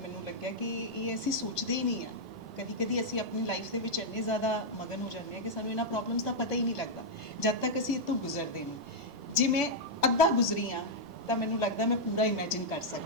ਲੱਗਿਆ ਕਿ ਇਹ ਅਸੀਂ ਸੋਚਦੇ ਹੀ ਨਹੀਂ ਹਾਂ। ਕਦੀ ਅਸੀਂ ਆਪਣੀ ਲਾਈਫ ਦੇ ਵਿੱਚ ਇੰਨੇ ਜ਼ਿਆਦਾ ਮਗਨ ਹੋ ਜਾਂਦੇ ਹਾਂ ਕਿ ਸਾਨੂੰ ਇਹਨਾਂ ਪ੍ਰੋਬਲਮਸ ਦਾ ਪਤਾ ਹੀ ਨਹੀਂ ਲੱਗਦਾ ਜਦ ਤੱਕ ਅਸੀਂ ਇਹ ਤੋਂ ਗੁਜ਼ਰਦੇ ਨਹੀਂ। ਜੇ ਮੈਂ ਅੱਧਾ ਗੁਜ਼ਰੀ ਹਾਂ ਤਾਂ ਮੈਨੂੰ ਲੱਗਦਾ ਮੈਂ ਪੂਰਾ ਇਮੇਜਿਨ ਕਰ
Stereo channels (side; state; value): both; normal; correlation -0.04